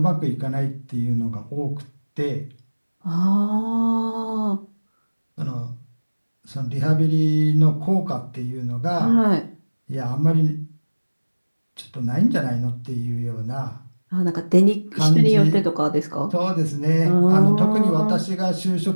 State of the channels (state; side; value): inverted; both; correlation -1.00